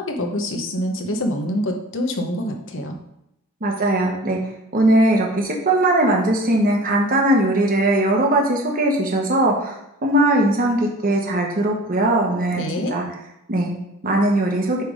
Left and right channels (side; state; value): both; normal; correlation 0.43